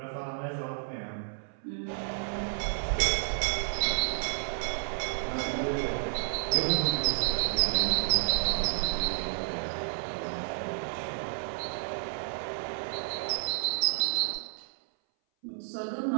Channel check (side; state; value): left; silent; 57 dB below the other